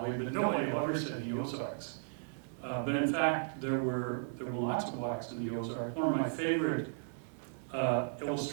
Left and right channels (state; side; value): silent; left; digital silence